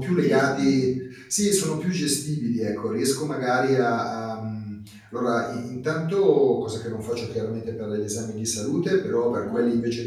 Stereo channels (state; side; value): identical; both; correlation 1.00